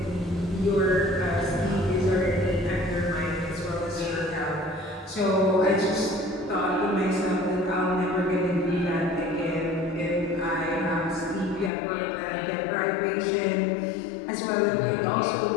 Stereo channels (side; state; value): right; drops out; at 11.7 s